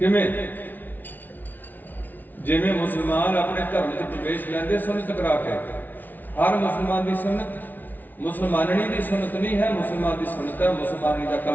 ਜਿਵੇਂ ਮੁਸਲਮਾਨ ਆਪਣੇ ਧਰਮ 'ਚ ਪ੍ਰਵੇਸ਼ ਲੈਂਦੇ ਸੁਨਨਤ ਕਰਾ ਕੇ, ਹਰ ਮੁਸਲਮਾਨ ਦੀ ਸੁਨਨਤ ਮੁਸਲਮਾਨਣੀ ਦੀ ਸੁਨਨਤ ਨਹੀਂ ਹੈ, ਮੁਸਲਮਾਨ ਦੀ ਸੁਨਨਤ ਹੈ ਮੁਸਲਮਾਨੀ ਦਾ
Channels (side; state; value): right; late; 0.083 ms